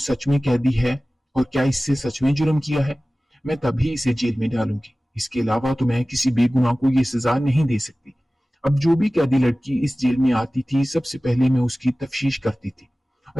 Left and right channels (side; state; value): both; normal; correlation 0.97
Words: में कैदी है और क्या इससे सच में जुर्म किया है। मैं तभी इसे जेल में डालूंगी। इसके अलावा तो मैं किसी बेगुनाह को ये सजा नहीं दे सकती। अब जो भी कैदी लड़की इस जेल में आती थी, सबसे पहले मैं उसकी तफ्तीश करती थी